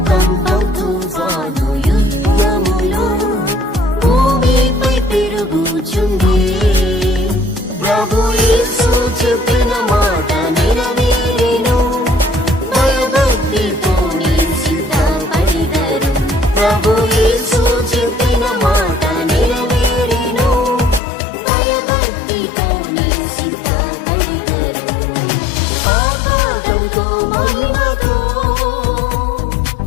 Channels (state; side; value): drops out; right; at 21.0 s